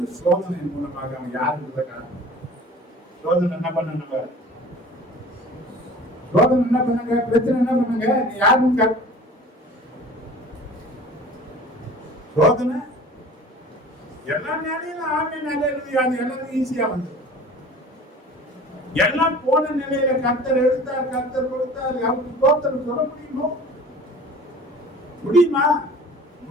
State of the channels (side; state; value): both; normal; correlation 0.43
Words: சோதனையின் மூலமாக அவன் யாருக்கு காரணம். சோதனை என்ன பண்ண, சோதனை என்ன பண்ணுங்க, பிரச்சனை என்ன பண்ணுங்க, நீ யாருன்னு சோதனை எல்லா நிலையிலும் ஆமே நிலையில அது எல்லாரும் ஈஸியா வந்து எல்லாம் போன நிலையில கர்த்தர் எடுத்தார், கர்த்தர் கொடுத்தார், அவருக்கு தோத்திரம் சொல்ல முடியுமோ, முடியுமா,